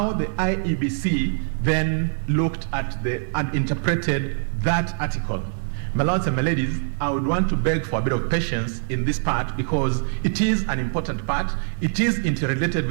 the IEBC then looked at and interpreted that article. My lords and my ladies, I would want to beg for a bit of patience in this part because it is an important part. It is interrelated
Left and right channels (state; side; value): silent; left; digital silence